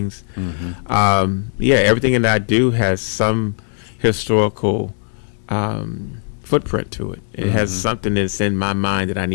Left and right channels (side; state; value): right; silent; 67 dB below the other